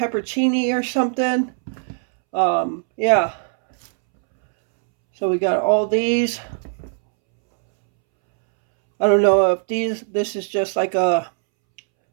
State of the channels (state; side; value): silent; left; 66 dB below the other